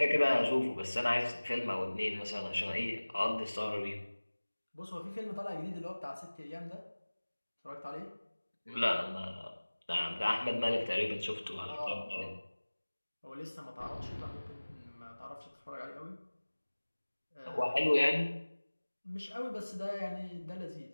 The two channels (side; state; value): both; inverted; correlation -1.00